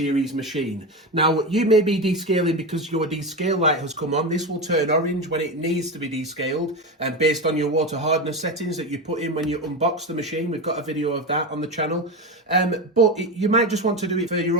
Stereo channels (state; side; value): normal; both; correlation 0.19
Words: machine. Now, you may be descaling because your descale light has come on. This will turn orange when it needs to be descaled and based on your water hardness settings that you put in when you unbox the machine. We've got a video of that on the channel. You might just want to do it for your